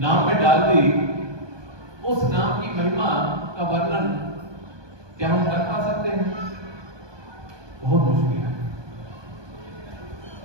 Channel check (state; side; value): late; left; 1.2 ms